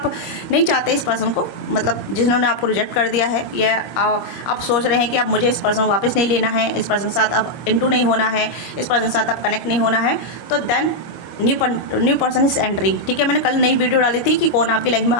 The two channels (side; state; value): right; late; 25 ms